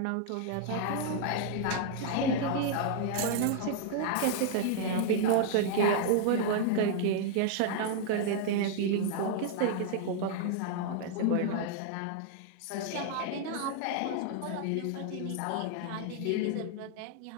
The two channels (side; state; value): both; different; correlation -0.01